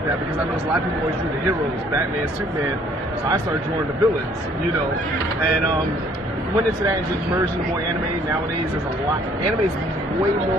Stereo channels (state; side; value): normal; both; correlation 0.61